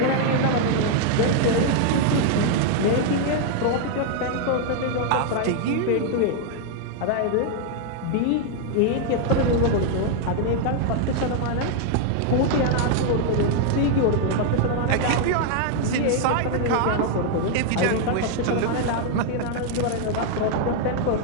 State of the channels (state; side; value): different; both; correlation 0.00